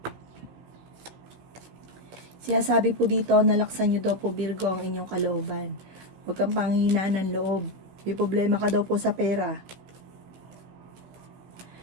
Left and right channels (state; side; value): late; left; 16 ms